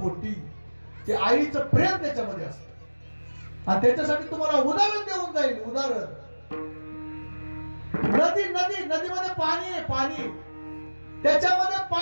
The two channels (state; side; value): inverted; both; correlation -1.00